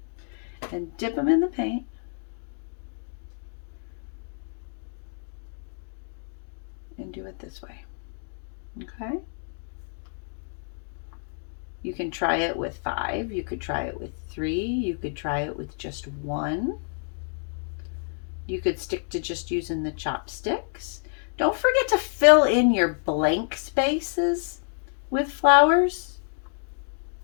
And dip them in the paint. And do it this way. Okay? You can try it with 5. You could try it with 3. You could try it with just 1. You could stick to just using the chopsticks. Don't forget to fill in your blank spaces with flowers,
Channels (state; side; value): silent; right; 59 dB below the other